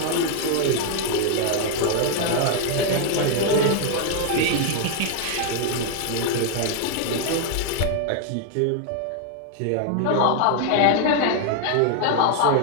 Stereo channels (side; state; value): both; different; correlation 0.00